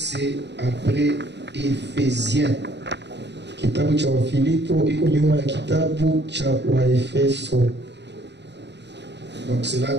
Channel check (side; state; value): left; late; 0.50 ms